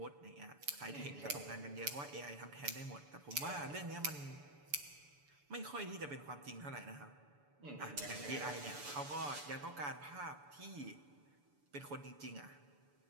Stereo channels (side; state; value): left; late; 6.9 ms